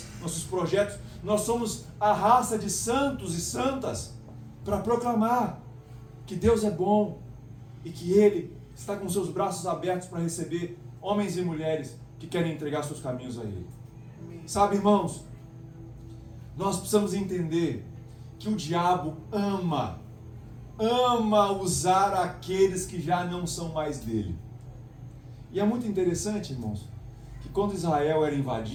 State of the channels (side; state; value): both; identical; correlation 1.00